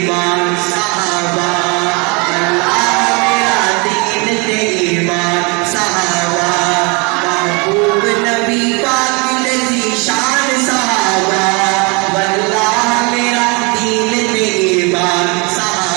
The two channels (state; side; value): quieter; left; 30.5 dB